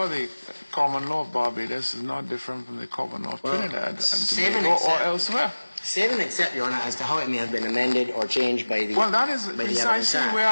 the common law of Barbados is not different from the common law of Trinidad and Tobago or elsewhere. Save and accept, Your Honor, as to how it may have been amended or changed by the Well, that is by the Evidence precisely Act. where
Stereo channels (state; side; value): inverted; both; correlation -1.00